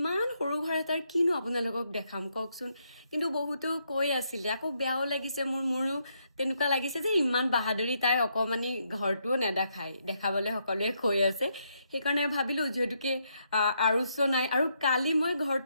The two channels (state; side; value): inverted; both; correlation -0.77